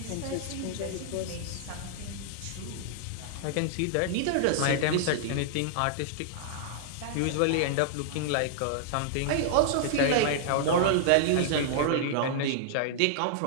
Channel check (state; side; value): different; both; correlation -0.01